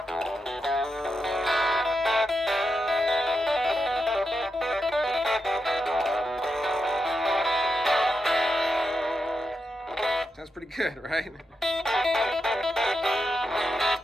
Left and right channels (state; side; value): normal; both; correlation 0.86